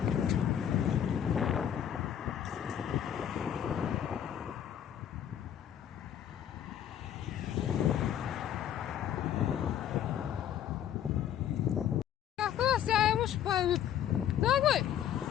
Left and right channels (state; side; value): quieter; right; 10.1 dB